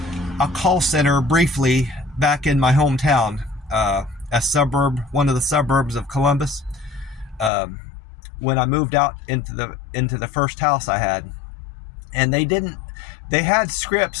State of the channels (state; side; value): drops out; right; at 7.5 s